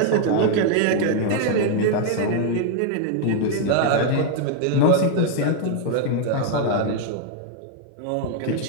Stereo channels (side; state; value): both; different; correlation 0.00